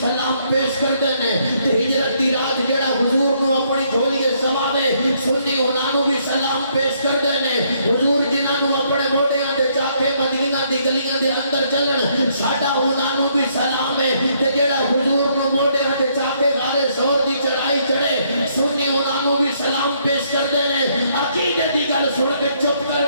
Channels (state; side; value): inverted; both; correlation -0.70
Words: سلام پیش کر دینے تے ہجرت دی رات جڑا حضور نو اپنی جھولی سماوے سنی انہوں بھی سلام پیش کر دینے حضور جنہاں نو اپنے موڑیاں تے جا کے مدینہ دی گلیاں دے اندر چلن ساڈا انہوں بھی سلام ہے تے جڑا حضور نو موڑیاں تے جا کے غار سور دی چڑھائی چڑھے سنی انہوں بھی سلام پیش کر دینے عقیدے دی گل سن کے چپ